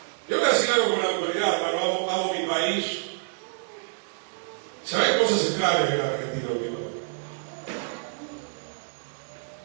Yo voy a decir algo con la autoridad, pero amo mi país. Se ven cosas extrañas en la Argentina, amigo.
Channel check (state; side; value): silent; left; 60 dB below the other